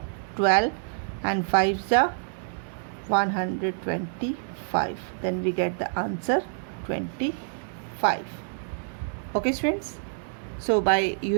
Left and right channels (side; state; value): left; silent; digital silence